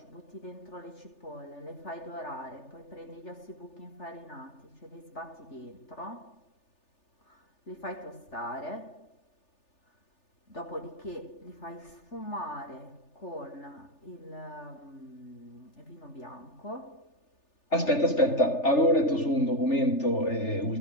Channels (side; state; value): right; late; 3.4 ms